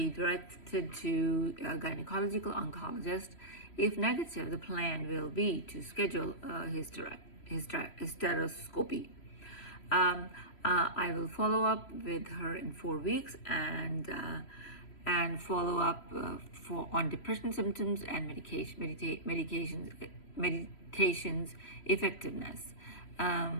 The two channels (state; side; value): late; right; 3.1 ms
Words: directed to a gynecological oncologist. If negative, the plan will be to schedule a hysteroscopy. I will follow up with her in 4 weeks and follow up on depression symptoms and medications effectiveness.